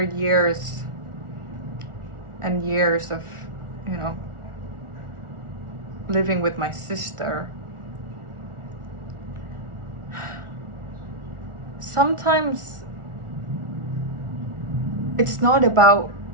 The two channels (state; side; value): late; left; 1.4 ms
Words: years and years of, living with my sister, sometimes it's not about